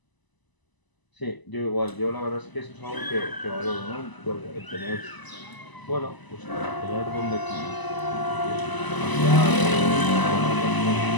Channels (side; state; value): right; late; 1.0 ms